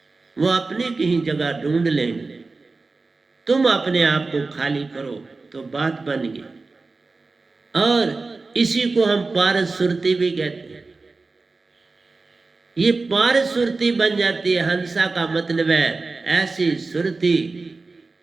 वो अपनी कहीं जगह ढूंढ लेंगे। तुम अपने आप को खाली करो तो बात बन गई। और इसी को हम पारस सुरती भी कहते हैं। ये पारस सुरती बन जाती है। हंसा का मतलब है ऐसी सुरती।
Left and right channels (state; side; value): quieter; left; 3.8 dB